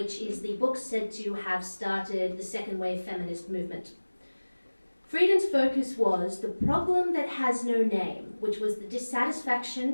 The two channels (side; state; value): both; inverted; correlation -1.00